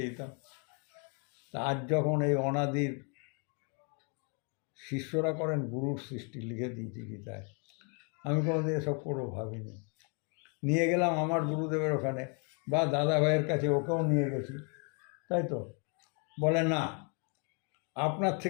দিতাম। তা আজ যখন এই অনাদির শিষ্যরা করেন গুরুর সৃষ্টি, লিখে দিয়েছি গীতায়, আমি কোনোদিন এসব করবো ভাবিনি। নিয়ে গেলাম আমার গুরুদেবের ওখানে বা দাদা ভাইয়ের কাছে, ওকেও নিয়ে গেছি, তাই তো বলে না, আপনার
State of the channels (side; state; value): right; quieter; 35.7 dB